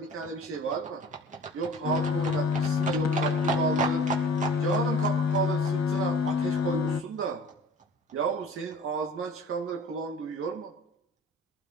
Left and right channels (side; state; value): both; normal; correlation 0.44